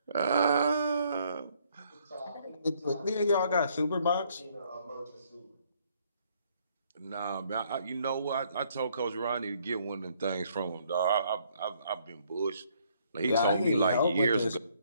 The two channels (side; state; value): both; inverted; correlation -0.67